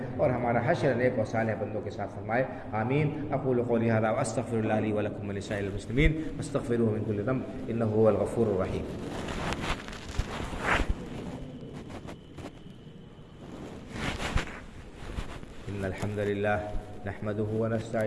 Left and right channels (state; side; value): identical; both; correlation 1.00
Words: اور ہمارا حشر نیک و صالح بندوں کے ساتھ فرمائے، آمین۔ اقول قولی ھذا واستغفر اللہ لی ولکم ولسائر المسلمین واستغفروہ من کل ذنب انہ هو الغفور الرحیم۔ ان الحمد للہ نحمده